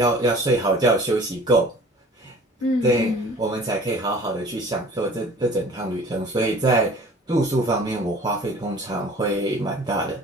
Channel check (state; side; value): normal; both; correlation 0.47